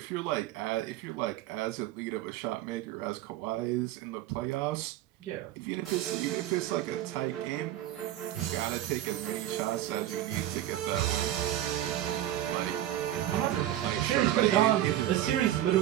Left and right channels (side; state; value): left; quieter; 13.1 dB